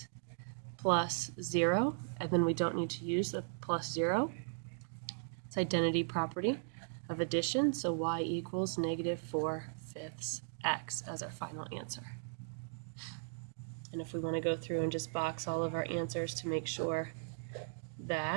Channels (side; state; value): left; silent; digital silence